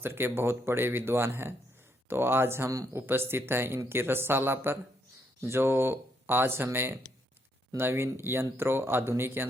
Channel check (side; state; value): both; normal; correlation 0.75